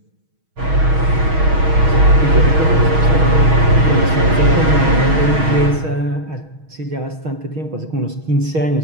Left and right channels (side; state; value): left; late; 6.3 ms